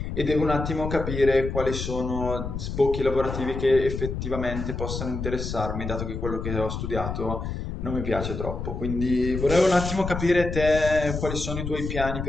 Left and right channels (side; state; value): left; noise; rumble, 5 dB below the sound